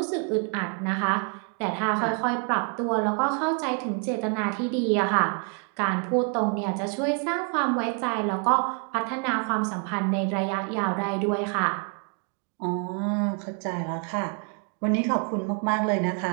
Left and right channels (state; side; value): quieter; left; 38.2 dB